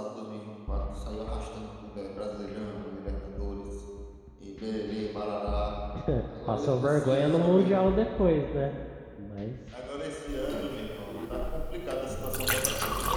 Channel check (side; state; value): both; identical; correlation 1.00